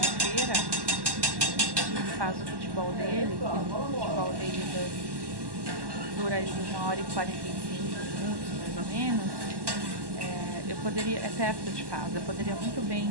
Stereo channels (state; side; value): late; left; 1.1 ms